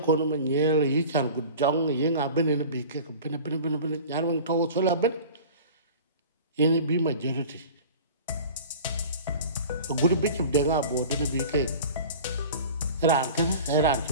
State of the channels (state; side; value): inverted; both; correlation -0.39